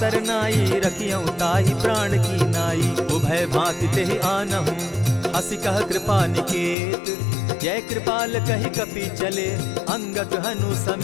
रखियौ ताहि प्राण की नाई। उभय भांति तेहि आनहु, हसी कह कृपा निकेत। जय कृपाल कहि कपि चले, अंगद हनु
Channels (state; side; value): drops out; right; at 6.8 s